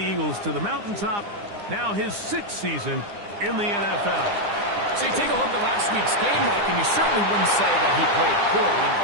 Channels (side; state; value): left; late; 9.8 ms